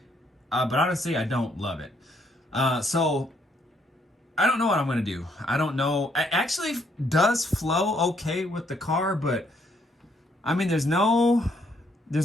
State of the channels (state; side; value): normal; both; correlation 0.71